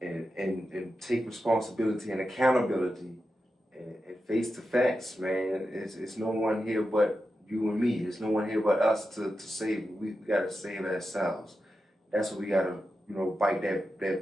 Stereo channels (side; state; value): both; normal; correlation 0.90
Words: and take responsibility and accountability and face the facts, man. It's no one here but you and me. There's no one here but us to save. We gotta save ourselves. That's what we gotta, bite